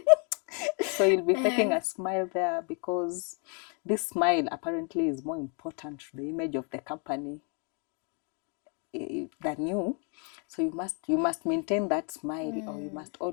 So you'll be faking a smile there because this smile apparently is more important to the image of the company than you. So you must maintain that smile, or you must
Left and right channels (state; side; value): quieter; right; 38.8 dB